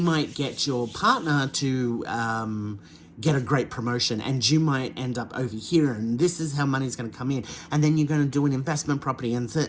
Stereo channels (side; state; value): both; identical; correlation 1.00